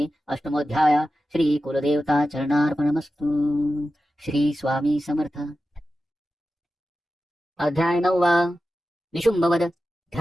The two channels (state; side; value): normal; both; correlation 0.93